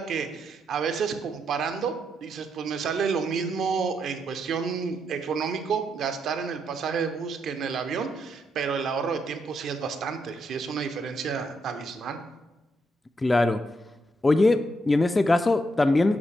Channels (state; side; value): normal; both; correlation 0.79